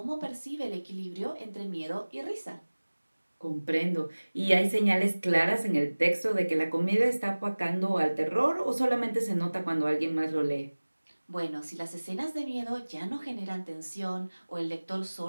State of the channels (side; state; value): both; inverted; correlation -1.00